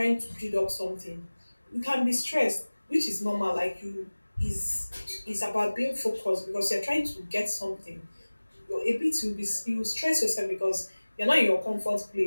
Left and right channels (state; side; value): inverted; both; correlation -1.00